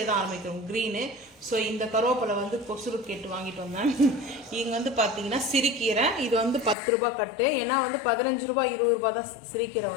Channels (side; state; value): right; drops out; at 6.8 s